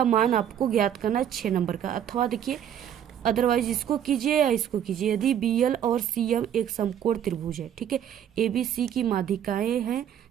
मान आपको ज्ञात करना है। 6 नंबर का। अथवा देखिए, अदरवाइज इसको कीजिए या इसको कीजिए। यदि BL और CM एक समकोण त्रिभुज है, ठीक है, ABC की माध्यिकाएं हैं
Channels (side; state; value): left; quieter; 9.7 dB